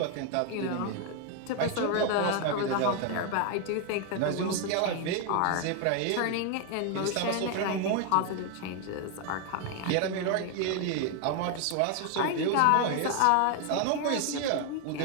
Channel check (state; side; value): different; both; correlation 0.01